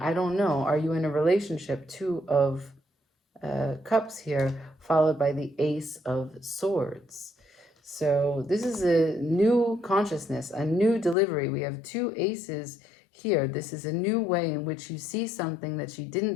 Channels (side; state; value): right; drops out; at 11.2 s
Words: I don't know. Are you in a relationship? 2 of Cups here, followed by the Ace of Swords. So this is a new consciousness, a new delivery. We have 2 aces here. This is a new way in which you see something that you didn't